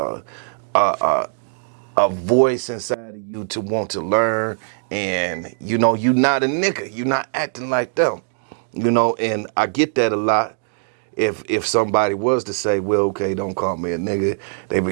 a voice inside of you to want to learn. And, you know, you're not a nigga. You're not acting like them, you know, and I get that a lot. If somebody was to say, well, okay, don't call me a nigga, they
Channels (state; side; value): silent; left; digital silence